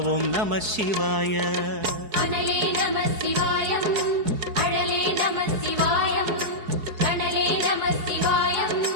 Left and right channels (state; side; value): late; left; 4.7 ms